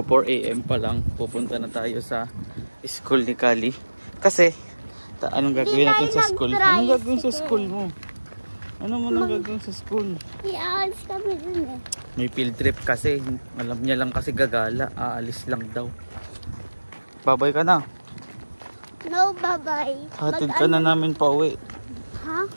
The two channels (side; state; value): both; inverted; correlation -1.00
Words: 4 AM pa lang. Pupunta na tayo sa school ni Kali. Kasi, anong gagawin natin sa school? Anong gagawin sa school mo? Ano mo nang gagawin sa school? Iaalis kami dun eh. May field trip kasi. Alam niya lang kasi gagala. Aalis lang daw. Babay ka na. No, bye-bye. Hatid ka na namin pa uwi. Ha?